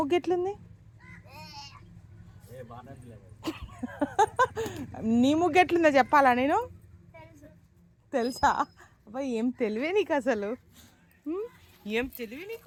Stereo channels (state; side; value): identical; both; correlation 1.00